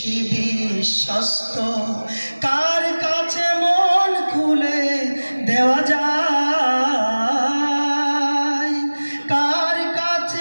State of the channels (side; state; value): both; inverted; correlation -1.00